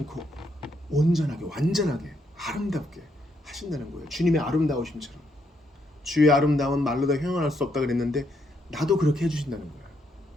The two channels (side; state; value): both; normal; correlation 0.76